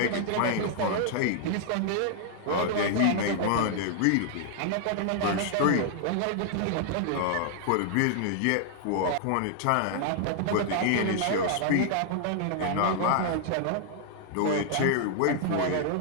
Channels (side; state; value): both; different; correlation 0.00